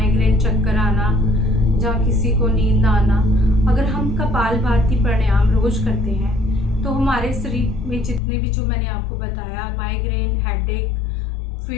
चक्कर आना, जहाँ किसी को नींद ना आना, अगर हम कपालभाति प्राणायाम रोज करते हैं तो हमारे शरीर में जितने भी, जो मैंने आपको बताया, माइग्रेन, हेडेक,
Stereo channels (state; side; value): drops out; right; at 8.2 s